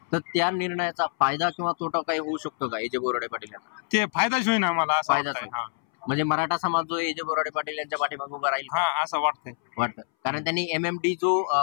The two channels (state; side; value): silent; right; 60 dB below the other